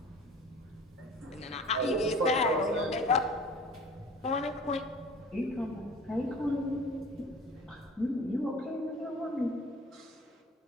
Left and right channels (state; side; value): normal; both; correlation 0.44